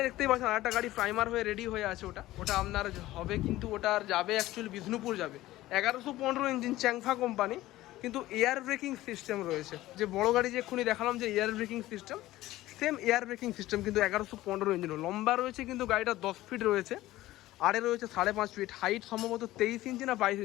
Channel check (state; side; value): quieter; right; 16.3 dB